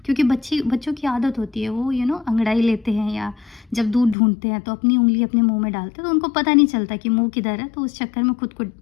क्योंकि बच्चों की आदत होती है, वो अंगड़ाई लेते हैं या जब दूध ढूंढते हैं तो अपनी उंगली अपने मुंह में डालते हैं, तो उनको पता नहीं चलता कि मुंह किधर है, तो उस चक्कर में खुद को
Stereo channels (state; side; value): drops out; right; at 4.2 s